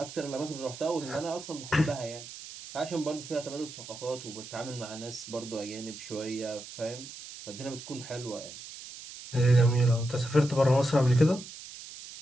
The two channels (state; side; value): noise; right; hiss, 13 dB below the sound